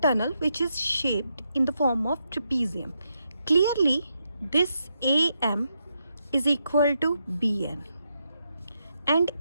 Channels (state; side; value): inverted; both; correlation -0.82